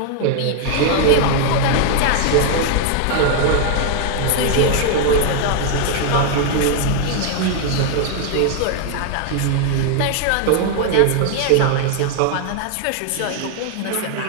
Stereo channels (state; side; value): different; both; correlation 0.00